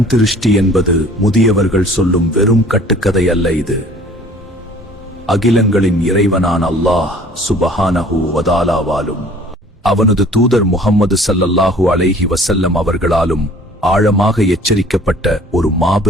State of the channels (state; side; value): normal; both; correlation 0.51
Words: திருஷ்டி என்பது முதியவர்கள் சொல்லும் வெறும் கட்டுக்கதை அல்ல. இது அகிலங்களின் இறைவனான அல்லாஹ் சுப்ஹானஹு வ தஆலாவாலும் அவனது தூதர் முஹம்மது ஸல்லல்லாஹு அலைஹி வஸல்லம் அவர்களாலும் ஆழமாக எச்சரிக்கப்பட்ட ஒரு